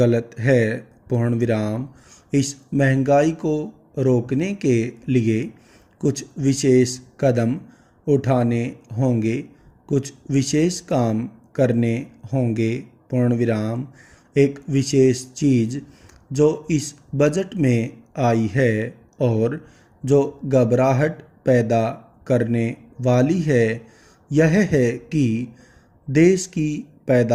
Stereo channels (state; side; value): identical; both; correlation 1.00